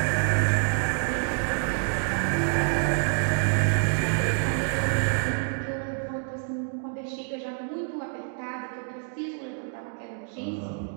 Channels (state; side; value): silent; left; digital silence